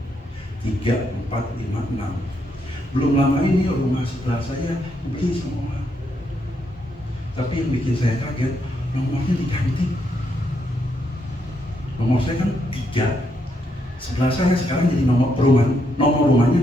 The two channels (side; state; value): both; normal; correlation 0.77